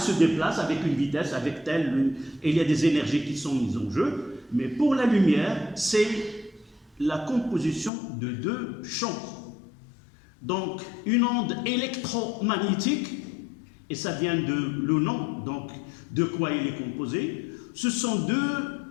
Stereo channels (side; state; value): right; drops out; at 7.9 s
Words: déplacent avec une vitesse, avec telle, et il y a des énergies qui sont mises en jeu. Mais pour la lumière, c'est la composition de deux champs. Donc, une onde électromagnétique, et ça vient de le nom, donc de quoi il est composé, ce sont deux